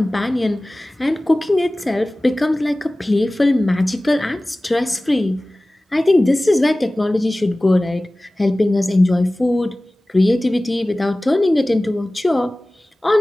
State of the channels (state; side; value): normal; both; correlation 0.98